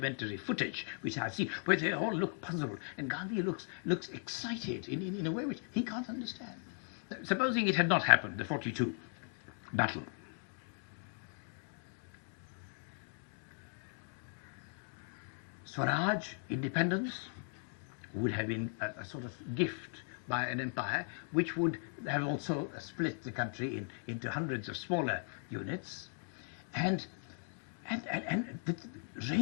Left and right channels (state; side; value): silent; right; 52 dB below the other